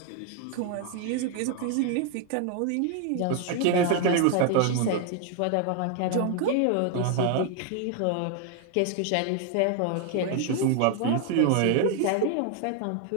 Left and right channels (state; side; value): different; both; correlation 0.01